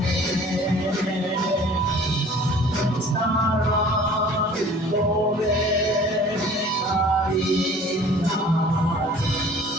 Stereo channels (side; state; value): both; normal; correlation 0.49